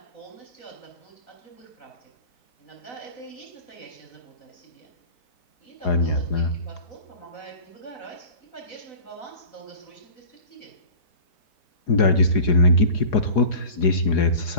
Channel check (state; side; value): late; right; 4.8 ms